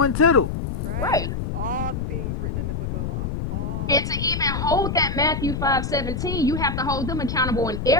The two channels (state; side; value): noise; left; rumble, 3 dB below the sound